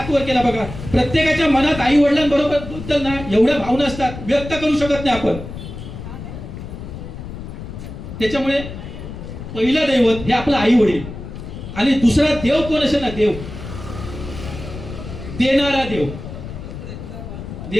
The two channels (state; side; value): noise; left; rumble, 10 dB below the sound